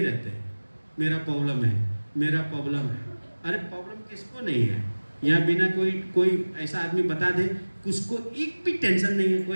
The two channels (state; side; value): inverted; both; correlation -1.00